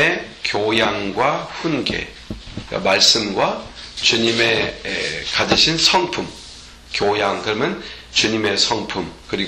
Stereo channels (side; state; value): both; identical; correlation 1.00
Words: 교양과 훈계, 그러니까 말씀과 주님의 가지신 성품, 교양, 그러면 주님의 성품,